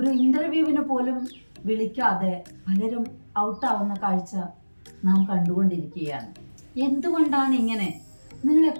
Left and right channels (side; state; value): both; inverted; correlation -1.00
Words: ഇന്റർവ്യൂവിന് പോലും വിളിക്കാതെ പലരും ഔട്ടാവുന്ന കാഴ്ച നാം കണ്ടുകൊണ്ടിരിക്കുകയാണ്. എന്തുകൊണ്ടാണ് ഇങ്ങനെ? നിങ്ങൾ